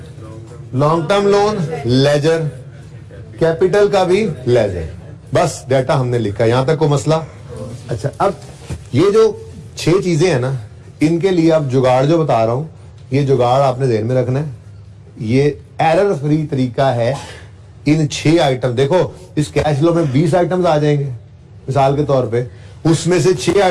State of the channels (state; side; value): identical; both; correlation 1.00